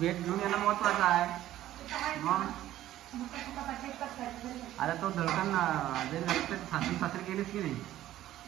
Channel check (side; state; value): left; quieter; 13.7 dB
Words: घेऊन येणं महत्वाचं आहे. मग आता तो धडकन सासरी गेलीस की नाही